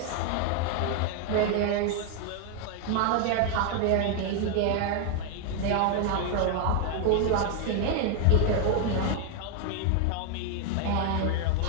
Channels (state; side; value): different; both; correlation 0.00